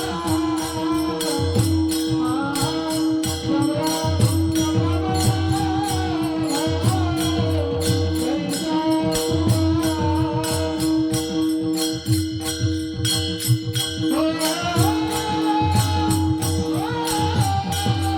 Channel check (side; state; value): both; identical; correlation 1.00